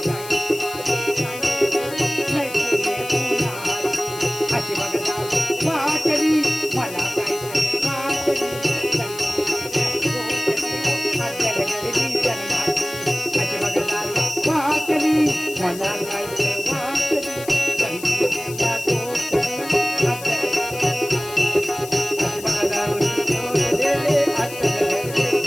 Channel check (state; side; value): noise; left; hiss, 14 dB below the sound